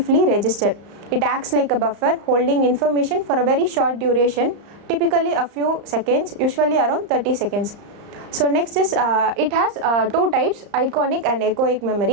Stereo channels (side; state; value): left; late; 35 ms